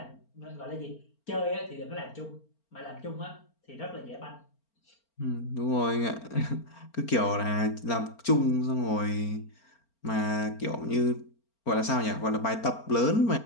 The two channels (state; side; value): late; right; 4.4 ms